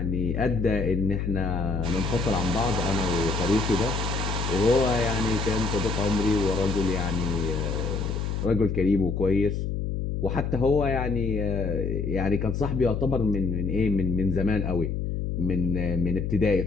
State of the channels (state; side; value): noise; left; hum, 2 dB below the sound